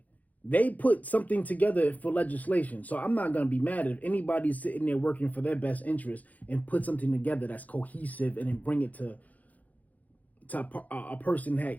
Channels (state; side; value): late; right; 0.077 ms